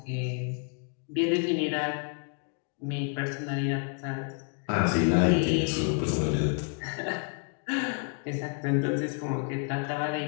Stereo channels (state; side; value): quieter; right; 39.1 dB